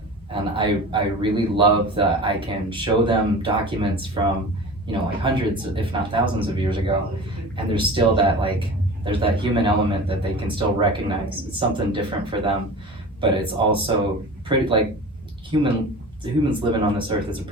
And I really love that I can show them documents from, like hundreds, if not thousands of years ago. And there's still there's that human element that they can still recognize. It's something different for them, but it's also pretty humans living on this earth is a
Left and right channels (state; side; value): normal; both; correlation 0.35